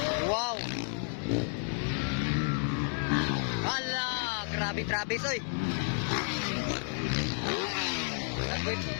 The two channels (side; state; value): right; silent; 57 dB below the other